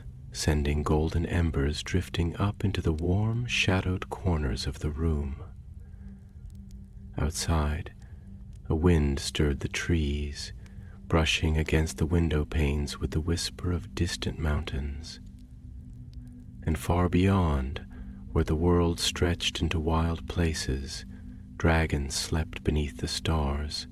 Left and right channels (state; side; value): identical; both; correlation 1.00